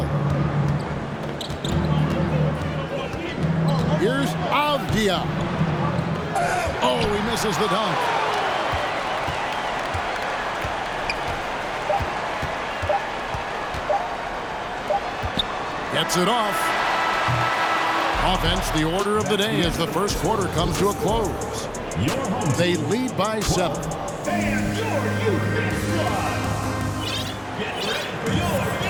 Here's Avdija. Oh, he misses the dunk. Gets it off. Offense, the order of the day as the first quarter comes to a close. They lead by 7.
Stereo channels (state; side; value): identical; both; correlation 1.00